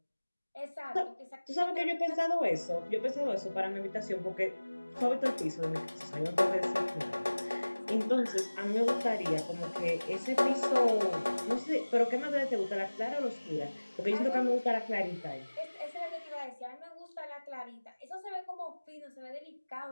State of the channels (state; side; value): inverted; both; correlation -1.00